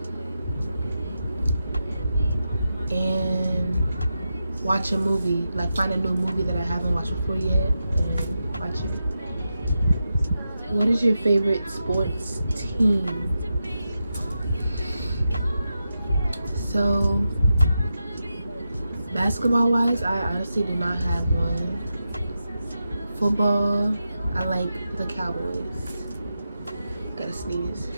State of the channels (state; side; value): inverted; both; correlation -0.89